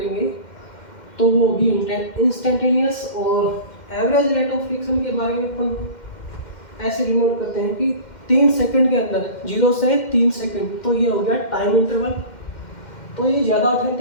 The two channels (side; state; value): right; late; 2.1 ms